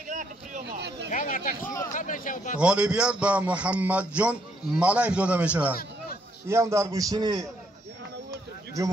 غالبیت به محمد جان ملایف داده می شود. این هم در گوشتین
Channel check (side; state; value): both; normal; correlation 0.72